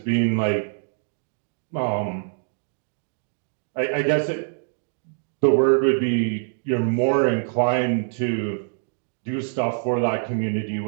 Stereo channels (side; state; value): left; silent; digital silence